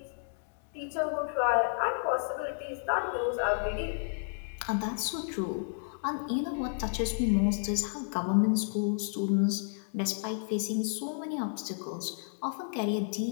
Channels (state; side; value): silent; right; 57 dB below the other